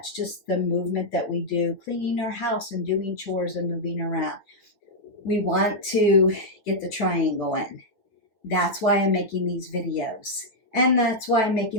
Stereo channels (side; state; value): right; late; 9.4 ms